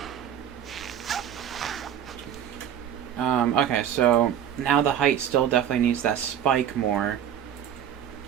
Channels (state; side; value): quieter; left; 9.5 dB